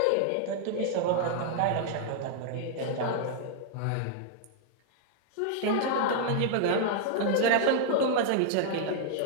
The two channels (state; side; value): different; both; correlation -0.01